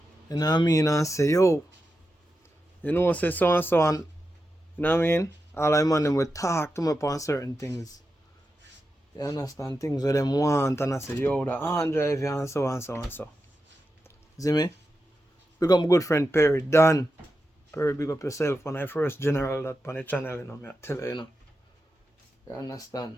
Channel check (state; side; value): normal; both; correlation 0.89